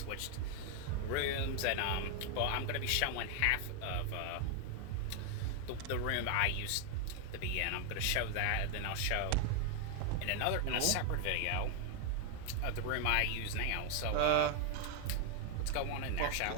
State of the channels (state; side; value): different; both; correlation 0.01